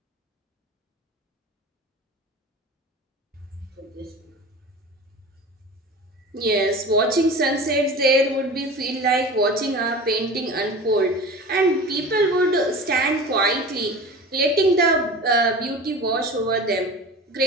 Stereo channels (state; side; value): normal; both; correlation 0.35